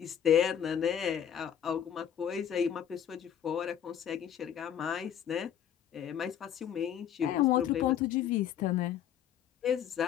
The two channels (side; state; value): right; quieter; 9.5 dB